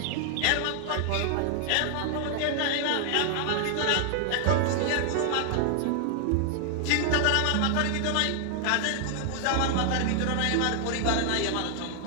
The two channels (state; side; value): different; both; correlation 0.00